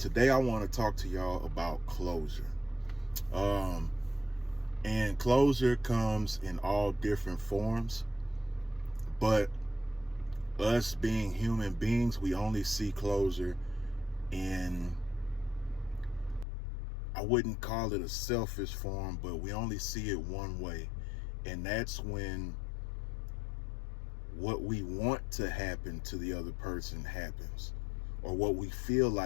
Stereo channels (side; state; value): right; drops out; at 16.4 s